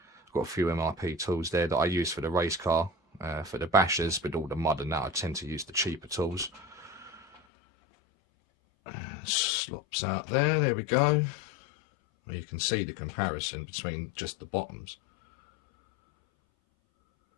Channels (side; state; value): right; drops out; at 7.4 s